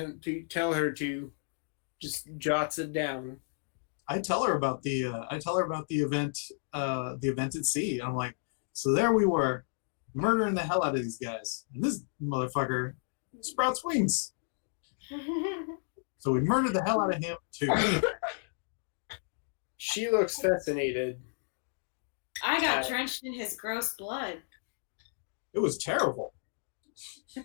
to. Just jots it down. I tell her about the event at sea. I'm like, so there we were, murdering the hell out of these guys, and this motherfucker sprouts wings. So we murdered the hell out of him too. She looks fascinated. I got drenched in his gross blood. It was terrible.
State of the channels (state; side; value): silent; right; digital silence